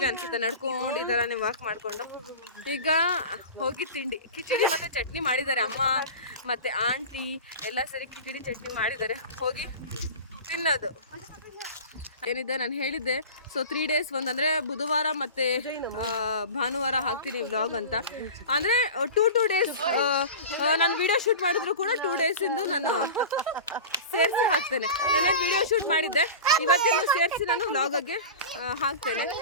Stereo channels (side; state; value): both; inverted; correlation -0.32